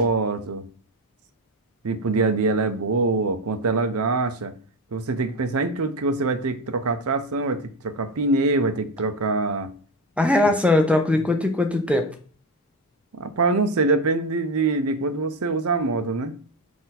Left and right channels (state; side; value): normal; both; correlation 0.17